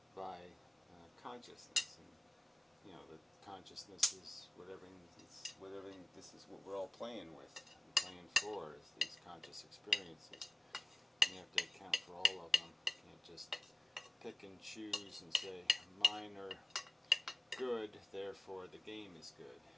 by consciousness, and the consciousness is whatever. This is what we're all playing with, and playing for, is these conscious experiences. And you have to account for all of them. You can't just pick and choose and say mine are good, therefore the game is good.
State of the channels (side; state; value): both; normal; correlation 0.96